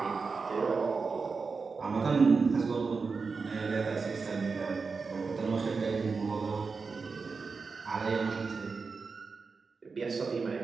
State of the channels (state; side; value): quieter; left; 4.7 dB